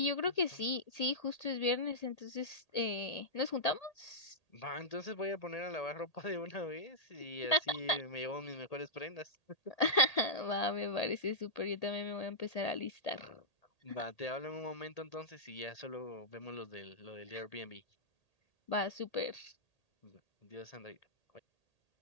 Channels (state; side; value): late; right; 1.8 ms